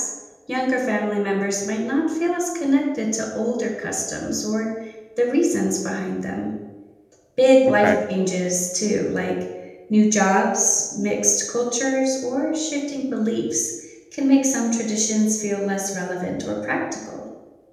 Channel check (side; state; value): both; identical; correlation 1.00